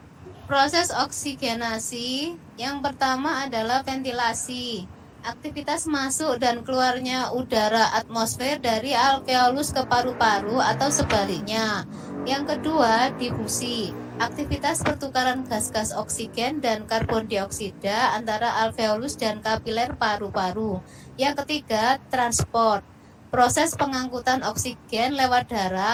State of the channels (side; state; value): both; identical; correlation 1.00